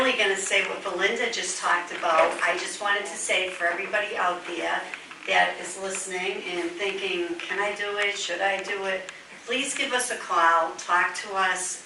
going to say what Belinda just talked about. I just wanted to say for everybody out there that is listening and thinking, can I do it? Should I do it? Please give us a call. Talk to us.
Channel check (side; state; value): both; identical; correlation 1.00